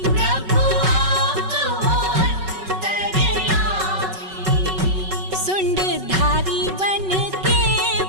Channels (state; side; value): late; left; 5.3 ms